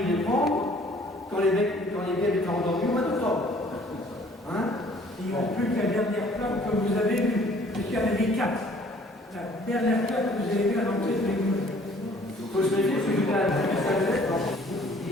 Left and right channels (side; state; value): both; normal; correlation 0.56